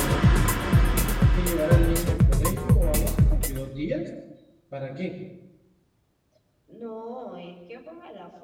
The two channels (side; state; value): both; identical; correlation 1.00